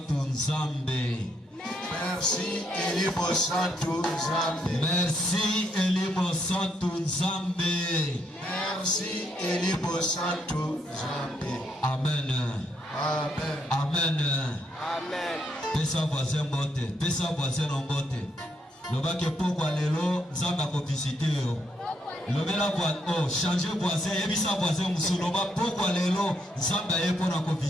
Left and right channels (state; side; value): normal; both; correlation 0.75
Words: Nzambe. Merci Elimo Santu Nzambe. Merci Elimo Santu Nzambe. Merci Elimo Santu Nzambe. Amen. Amen. Amen. Amen. Pesa voisin bote, pesa voisin en bote. Loba ke pokwa lelo Nzambe akovisite yo. Lobela oh, changer voisin, ebisa voisin musuloba pokwa lelo Nzambe aye pona ko